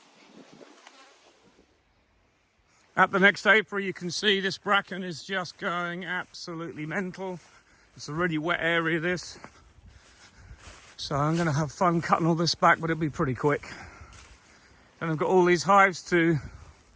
At the next apiary, you can see this bracken is just going absolutely mental. It's a really wet area, this. So I'm going to have fun cutting all this back, but it'll be pretty quick. And I've got all these hives to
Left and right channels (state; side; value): identical; both; correlation 1.00